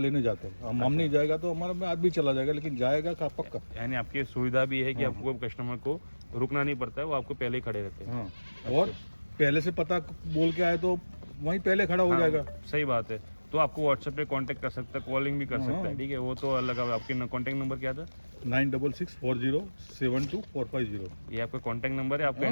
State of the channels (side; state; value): both; inverted; correlation -1.00